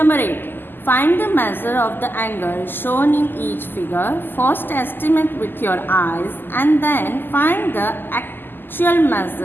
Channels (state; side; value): late; right; 0.094 ms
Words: 8. Find the measure of the angle shown in each figure. First estimate with your eyes and then find the actual